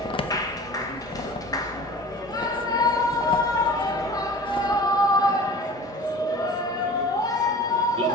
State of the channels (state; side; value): normal; both; correlation 0.40